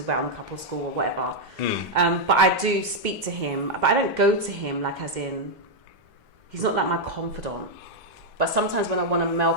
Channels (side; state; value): both; normal; correlation -0.01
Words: about on the couple school or whatever. But I do speak to him, but I don't go to him like as in, he's not like my confidant. But sometimes when I want a male